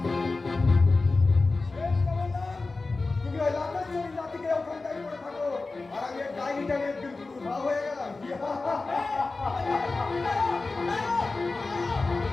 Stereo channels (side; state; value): right; quieter; 3.6 dB